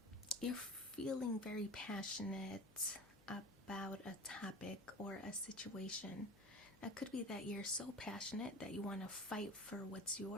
you're feeling very passionate about a topic or a situation. It could be that you're so passionate that you want to fight for what's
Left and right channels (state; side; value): noise; left; hum, 25 dB below the sound